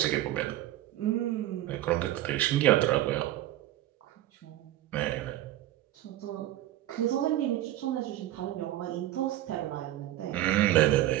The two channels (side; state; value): left; quieter; 14.2 dB